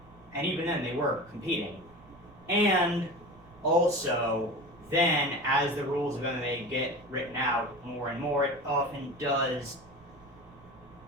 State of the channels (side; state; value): right; noise; rumble, 24 dB below the sound